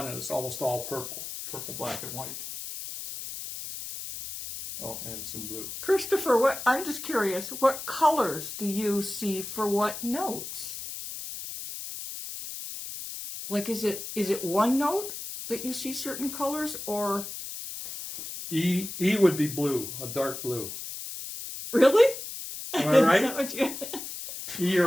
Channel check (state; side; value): noise; left; hiss, 8 dB below the sound